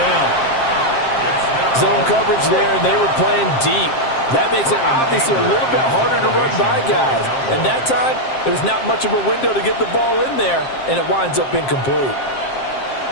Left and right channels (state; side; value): late; right; 7.6 ms